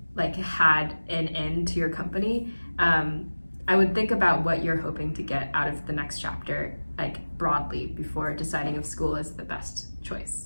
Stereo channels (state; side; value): inverted; both; correlation -1.00